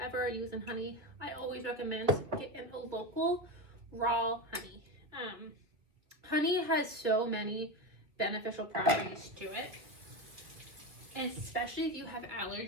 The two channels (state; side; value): late; left; 2.6 ms